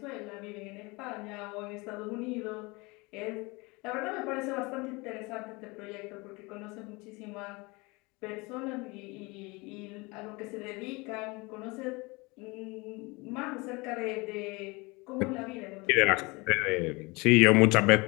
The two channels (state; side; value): quieter; right; 25.5 dB